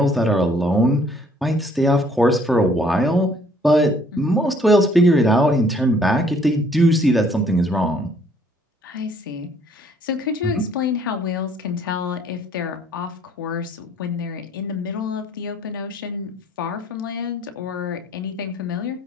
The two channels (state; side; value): normal; both; correlation 0.61